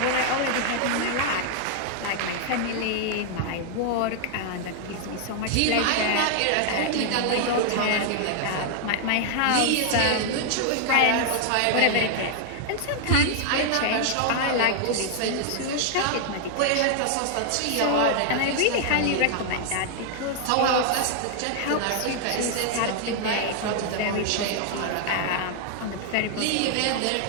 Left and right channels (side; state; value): both; different; correlation 0.00